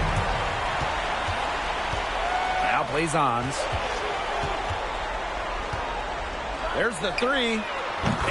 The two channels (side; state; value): both; identical; correlation 1.00